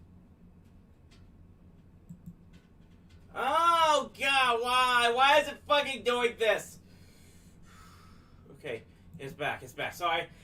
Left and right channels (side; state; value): both; identical; correlation 1.00